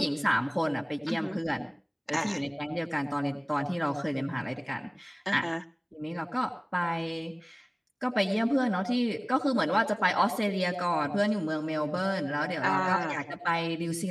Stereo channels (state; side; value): identical; both; correlation 1.00